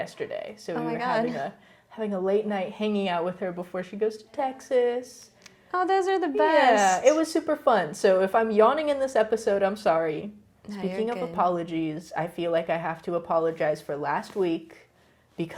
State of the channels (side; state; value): both; identical; correlation 1.00